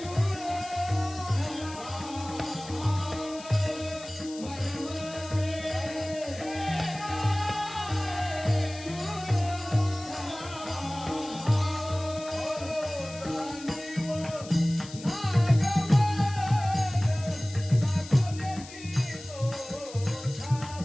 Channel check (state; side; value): noise; left; hiss, 16 dB below the sound